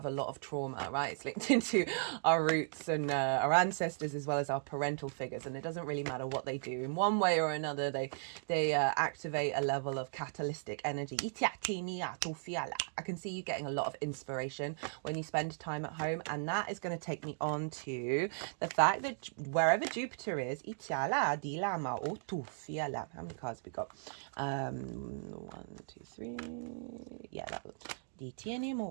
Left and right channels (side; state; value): left; silent; digital silence